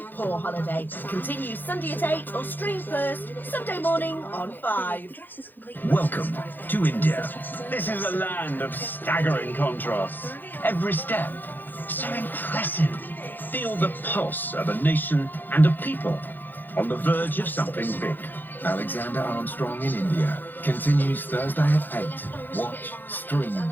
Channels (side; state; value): right; late; 0.089 ms